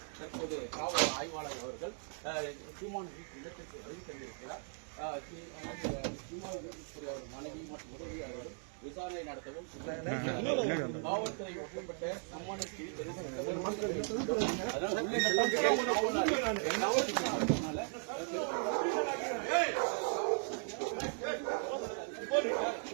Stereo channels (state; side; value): silent; left; 53 dB below the other